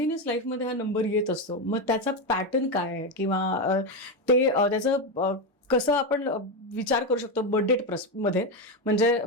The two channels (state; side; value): normal; both; correlation 0.11